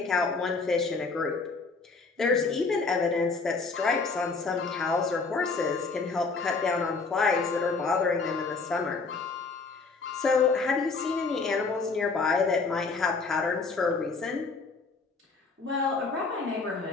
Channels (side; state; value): right; quieter; 4.3 dB